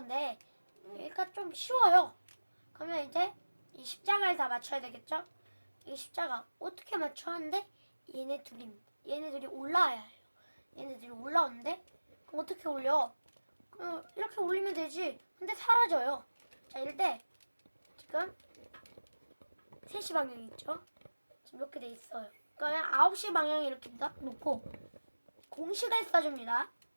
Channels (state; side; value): inverted; both; correlation -1.00